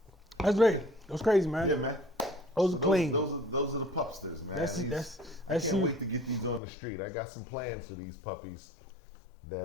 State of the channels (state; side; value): drops out; right; at 6.6 s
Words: That's great. That was crazy, man. Yeah, man. Those are clean. Those are the pupsters, man. I can't wait to get these on the street. I got some plans for these puppies.